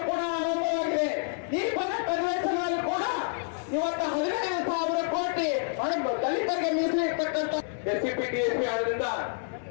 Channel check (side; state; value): right; silent; 59 dB below the other